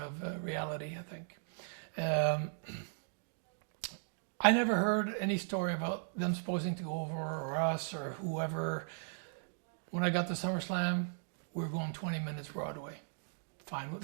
reality, I think. I never heard any story about them supposing to go over or us or whoever. When I got to SummerSlam, we were going 20 minutes Broadway. Fine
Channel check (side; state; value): left; silent; digital silence